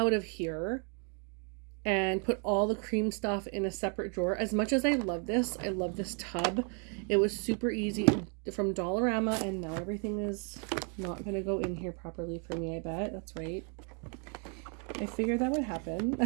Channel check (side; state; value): left; quieter; 39.5 dB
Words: of here and put all the cream stuff in a separate drawer. As much as I love this tub. It was super easy from Dollarama, and now everything is not going to go in here properly for me, I bet. That's right. I figured that would happen.